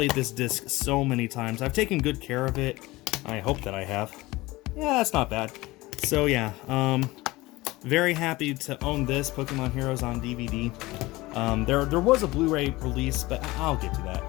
this disc so many times. I've taken good care of it. I hope that I have. Yeah, that's not bad. So yeah, very happy to own this, Pokemon Heroes on DVD. There was a Blu-ray release, but I'll get to that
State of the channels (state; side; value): quieter; right; 20.2 dB